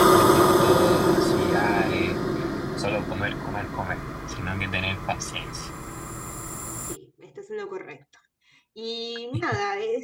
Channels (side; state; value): both; identical; correlation 1.00